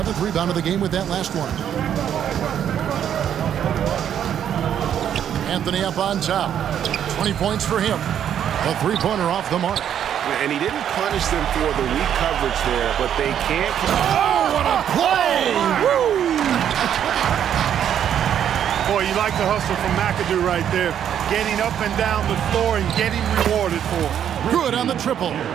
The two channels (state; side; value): quieter; left; 9.5 dB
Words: rebound of the game with that last one. Anthony up on top. 20 points for him. A 3-pointer off the mark. And he didn't punish them for the weak coverage there, but they can't. Oh, what a play! Woo! Boy, you like the hustle from McAdoo right there. Getting up and down the floor and getting rewarded for it. Good on the triple.